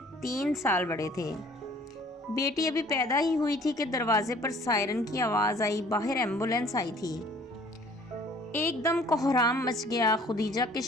3 سال بڑے تھے۔ بیٹی ابھی پیدا ہی ہوئی تھی کہ دروازے پر سائرن کی آواز آئی۔ باہر ایمبولینس آئی تھی۔ ایک دم کوہرام مچ گیا۔ خدیجہ کے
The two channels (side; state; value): both; normal; correlation 0.54